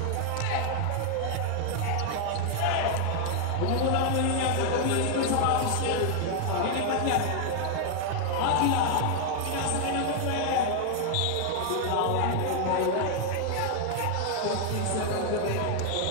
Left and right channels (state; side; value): different; both; correlation 0.00